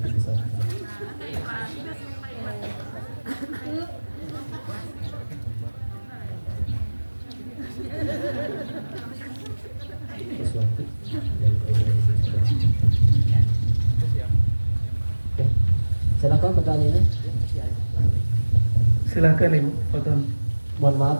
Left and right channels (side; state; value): both; inverted; correlation -1.00